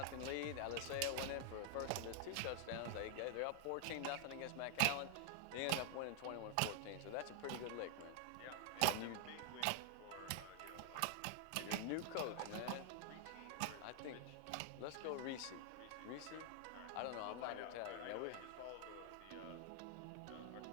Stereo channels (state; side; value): different; both; correlation 0.00